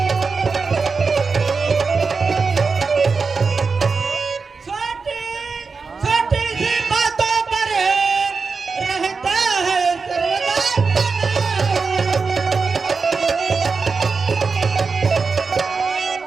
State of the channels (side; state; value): left; quieter; 4.7 dB